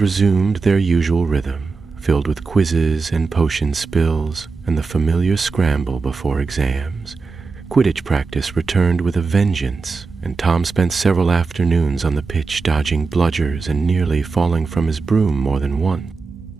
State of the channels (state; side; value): quieter; left; 4.4 dB